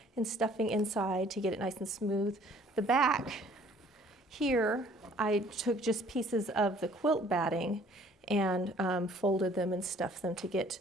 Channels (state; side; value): normal; both; correlation 0.56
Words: and stuffing inside to get it nice and smooth. The back here, I took just pieces of the quilt batting and folded them and stuffed them to get